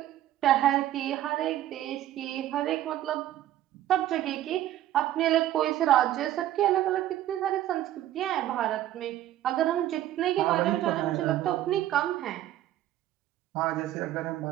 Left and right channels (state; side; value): quieter; left; 13.1 dB